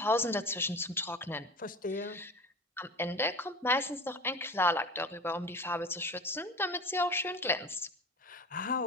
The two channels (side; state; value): both; normal; correlation 0.34